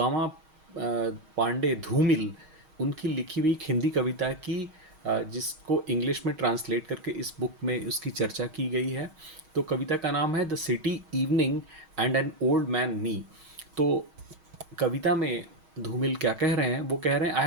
पांडे धूमिल उनकी लिखी हुई एक हिंदी कविता की, जिसको इंग्लिश में ट्रांसलेट करके इस बुक में उसकी चर्चा की गई है। तो कविता का नाम है the city evening and an old man me. तो कविता में धूमिल क्या कह रहे हैं, वो कह रहे हैं I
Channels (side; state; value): left; late; 6.4 ms